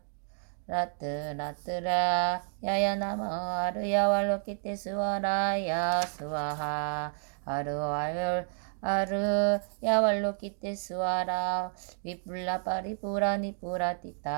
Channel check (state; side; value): silent; left; 57 dB below the other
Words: 라뜨라뜨라 야야나마 아르야 왈로키테 스와라야 스와하 아르와열 아르 야왈로키테 스와라 위뿔라 파리푸라 니푸라